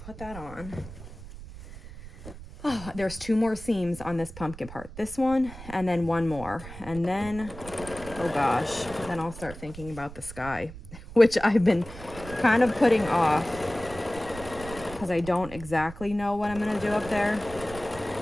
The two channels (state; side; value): noise; right; rumble, 14 dB below the sound